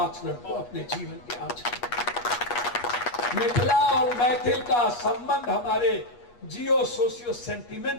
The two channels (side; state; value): right; late; 8.3 ms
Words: को अपने जीवन के आचरण। मिथिला और मैथिल का संबंध हमारे जियो सोशियो